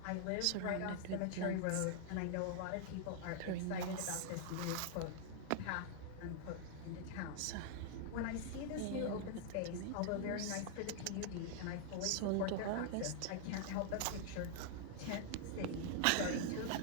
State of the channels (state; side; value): different; both; correlation -0.01